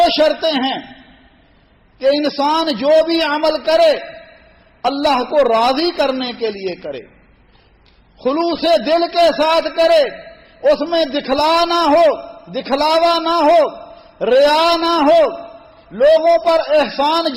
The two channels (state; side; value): identical; both; correlation 1.00